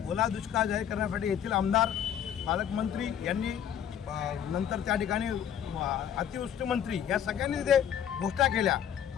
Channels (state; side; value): quieter; right; 9.4 dB